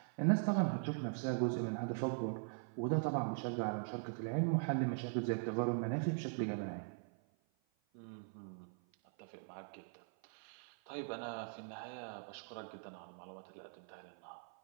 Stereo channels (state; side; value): silent; left; 50 dB below the other